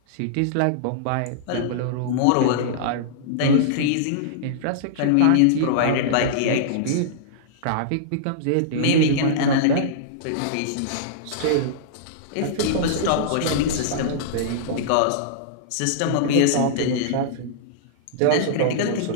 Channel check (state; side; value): different; both; correlation -0.02